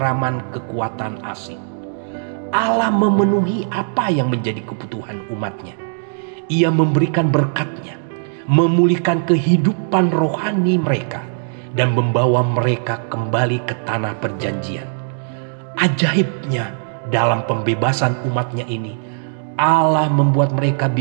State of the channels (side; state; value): left; silent; digital silence